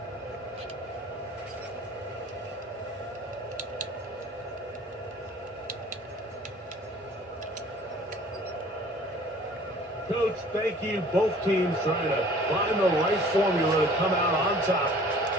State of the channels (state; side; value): normal; both; correlation 0.50